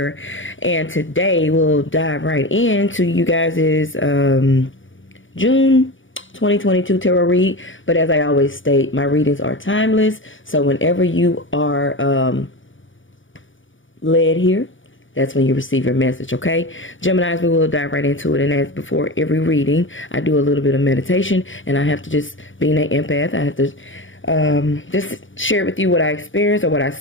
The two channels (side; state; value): right; late; 0.56 ms